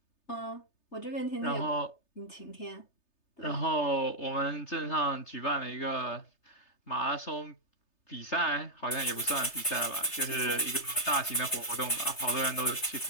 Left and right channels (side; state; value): right; late; 3.3 ms